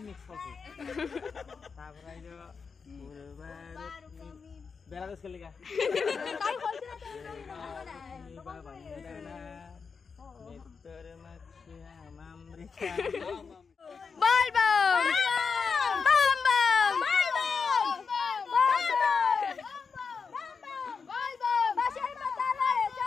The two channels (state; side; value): quieter; right; 5.4 dB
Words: মিক্স করছি তারপর আইলো বেলাদেশ কে লিগা বাবা মিত্তর মাছি আমৃতা বল বল বম বম